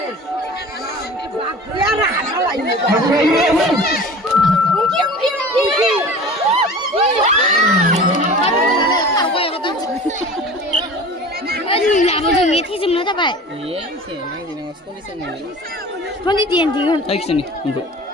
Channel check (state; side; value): normal; both; correlation 0.39